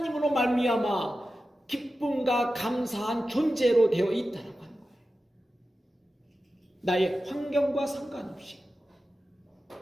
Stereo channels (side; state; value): both; normal; correlation 0.93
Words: 말미암아 기쁨과 감사한 존재로 되어 있다라고 하는 거예요. 나의 환경과 상관없이.